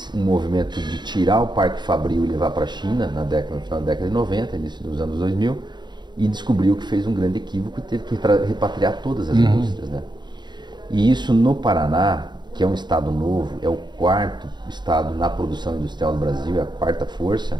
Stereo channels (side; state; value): left; late; 0.21 ms